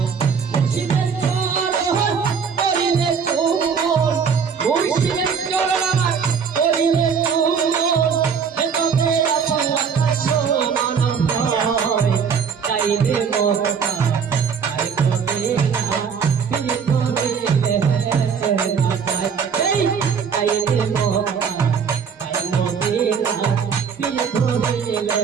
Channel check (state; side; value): quieter; left; 6.5 dB